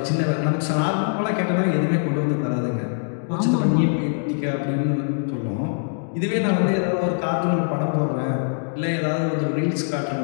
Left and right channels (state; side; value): silent; right; digital silence